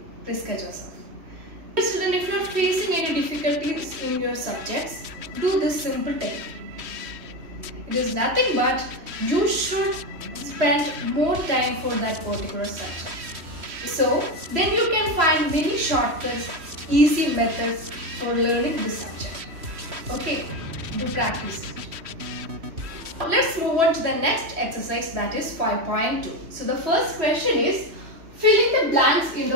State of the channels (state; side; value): late; left; 3.1 ms